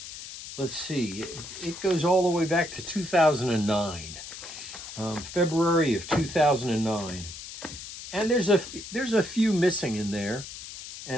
let's see, it goes all the way back to 2009, February of 2009. And there's a few missing in there,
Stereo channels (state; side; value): noise; left; hiss, 12 dB below the sound